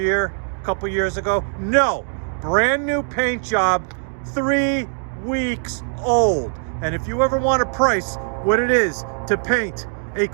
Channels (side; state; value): left; silent; 65 dB below the other